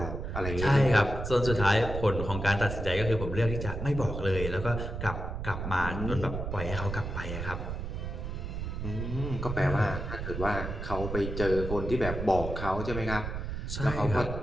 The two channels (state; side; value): noise; right; rumble, 5 dB below the sound